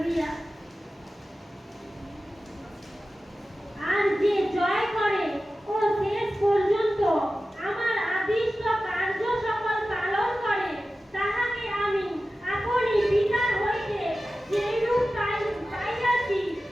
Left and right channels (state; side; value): normal; both; correlation 0.94